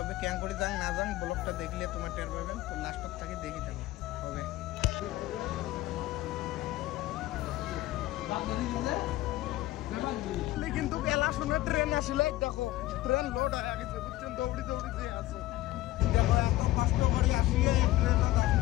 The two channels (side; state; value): right; quieter; 16.2 dB